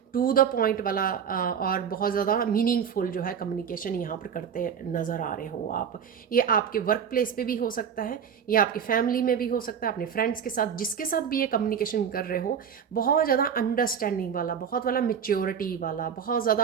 टू द पॉइंट वाला, और बहुत ज़्यादा मीनिंगफुल जो है कम्युनिकेशन यहाँ पर करते नज़र आ रहे हो आप। ये आपके वर्क प्लेस पे भी हो सकता है, ये आपकी फैमिली में भी हो सकता है, अपने फ्रेंड्स के साथ, जिसके साथ भी ये कम्युनिकेशन कर रहे हो। बहुत ज़्यादा अंडरस्टैंडिंग वाला, बहुत वाला मेच्योरिटी वाला, बहुत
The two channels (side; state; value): left; quieter; 7.6 dB